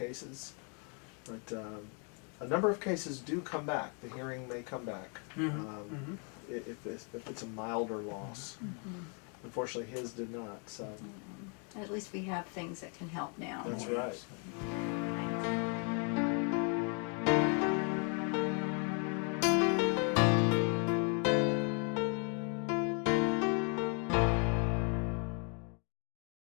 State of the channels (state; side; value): quieter; right; 38.4 dB